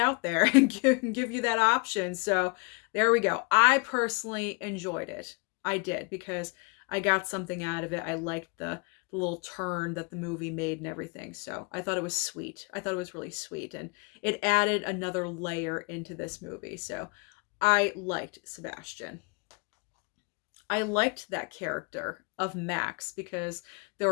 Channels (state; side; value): quieter; right; 32.3 dB